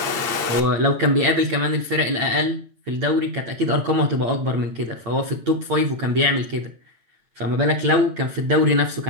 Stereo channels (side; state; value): left; late; 8.9 ms